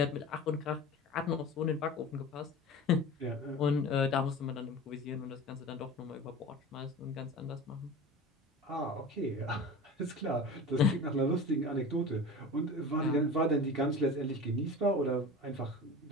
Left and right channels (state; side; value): normal; both; correlation 0.34